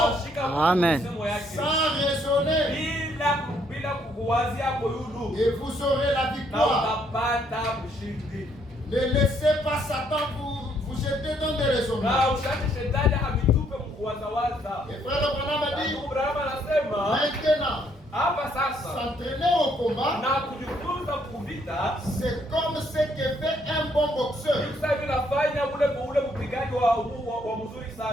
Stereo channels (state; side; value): normal; both; correlation 0.69